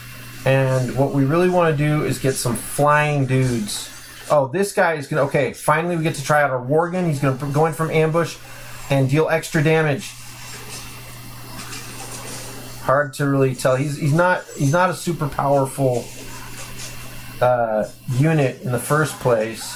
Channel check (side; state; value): both; identical; correlation 1.00